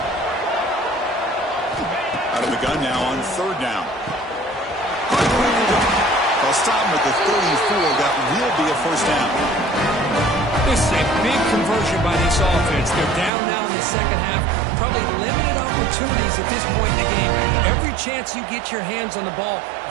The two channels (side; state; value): left; drops out; at 13.3 s